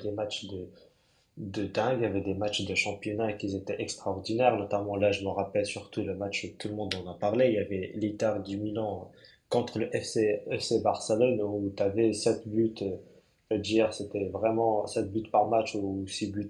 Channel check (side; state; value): both; identical; correlation 1.00